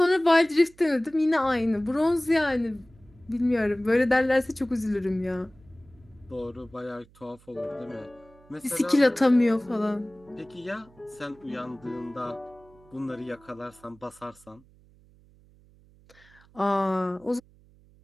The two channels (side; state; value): right; noise; hum, 28 dB below the sound